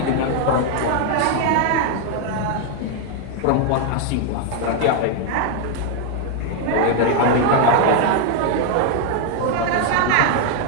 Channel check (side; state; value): both; different; correlation 0.00